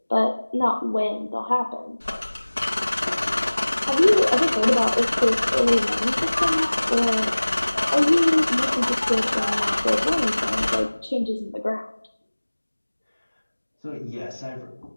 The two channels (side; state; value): both; inverted; correlation -1.00